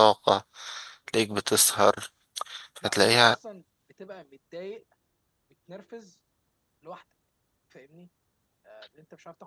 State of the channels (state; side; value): identical; both; correlation 1.00